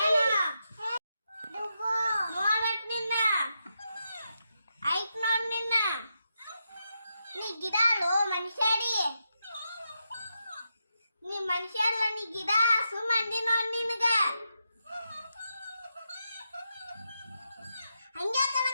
ನೋಡಟ್ ನಿನ್ನ ಐಕ್ ನೋಡ್ ನಿನ್ನ ನೀ ಗಿಡಾಳು ಮನುಷ್ಯಡಿ ನೀ ಮನುಷ್ಯ ಅಲ್ಲ ನೀ ಗಿಡ ಸುಮ್ಮಂದಿ ನೋಡ್ ನಿನಗ ಹಂಗೆ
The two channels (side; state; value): both; inverted; correlation -0.85